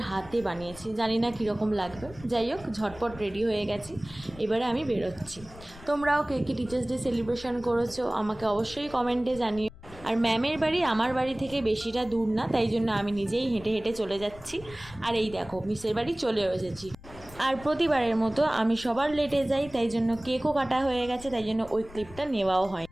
হাতে বানিয়েছি, জানি না কীরকম লাগবে। যাই হোক, ঝটপট রেডি হয়ে গেছি, এবারে আমি বেরোচ্ছি। তোমরাও কে কে টিচার্স ডে সেলিব্রেশন করেছো আমাকে অবশ্যই কমেন্টে জানিও। আর ম্যামের বাড়ি আমার বাড়ি থেকে বেশিটা দূর না, তাই জন্য আমি নিজেই হেঁটে হেঁটে চলে যাচ্ছি। আর এই দেখো মিসের বাড়ি চলেও এসেছি। আর প্রতিবারের মতো আমি সবার লেটে যাই, তাই জন্য কেকও কাটা হয়ে গেছে, তাই জন্য ওই ক্লিপটা নেওয়াও হয়।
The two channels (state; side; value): noise; left; rumble, 18 dB below the sound